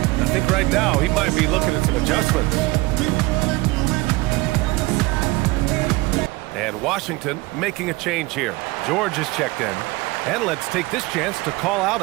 think right now he might be looking at some adjustments. And Washington making a change here. George is checked in. And let's take this chance to call out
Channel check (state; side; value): quieter; left; 22.1 dB